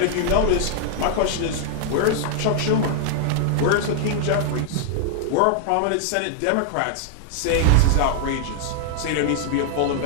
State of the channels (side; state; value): both; different; correlation -0.01